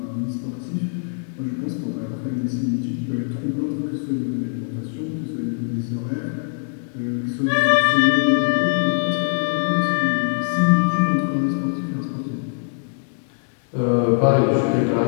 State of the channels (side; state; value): right; silent; digital silence